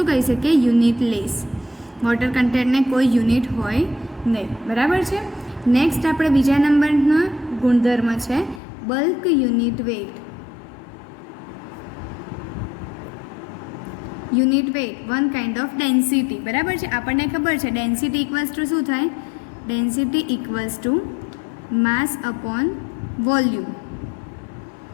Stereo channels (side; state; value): right; drops out; at 8.6 s